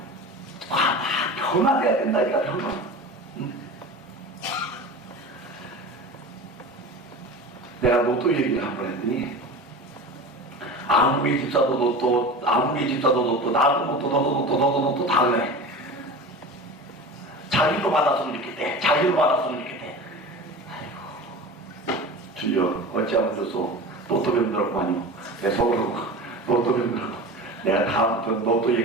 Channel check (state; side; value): normal; both; correlation 0.32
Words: 변화돼야 된다니까 변화. 응? 내가 로또 얘기를 한 번 했더니 아무리 집사도 로또, 아무리 집사도 로또, 나도 로또, 너도 로또, 너도 로또 다 그래. 자기도 받았으면 좋겠대. 자기도 받았으면 좋겠대. 아이고 주여 어찌하면 좋소. 로또 병들었구만요. 내 속으로 로또 병들었고 내가 다음부터 로또